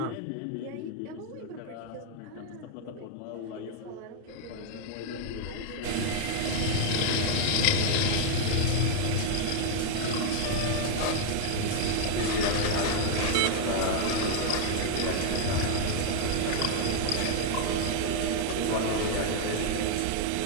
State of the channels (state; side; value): different; both; correlation 0.00